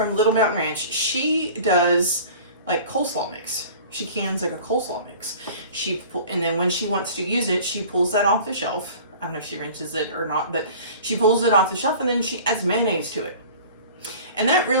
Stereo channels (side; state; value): both; inverted; correlation -0.44